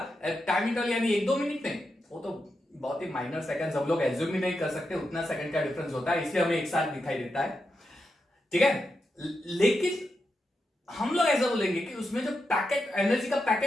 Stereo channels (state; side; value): normal; both; correlation 0.87